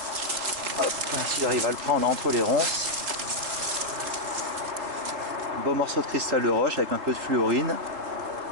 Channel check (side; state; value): left; late; 3.8 ms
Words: S'il arrive à le prendre entre les ronces. Un beau morceau de cristal de roche avec un peu de fluorine.